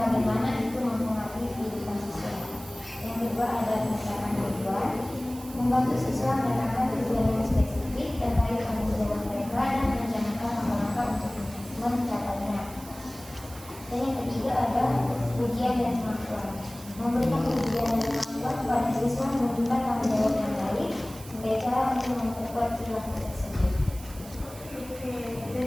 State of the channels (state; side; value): noise; right; hiss, 17 dB below the sound